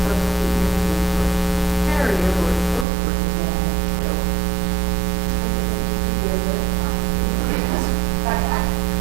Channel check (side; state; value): left; drops out; at 2.9 s